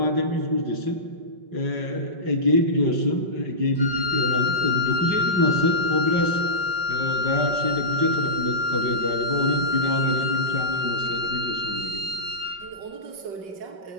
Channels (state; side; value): late; left; 5.3 ms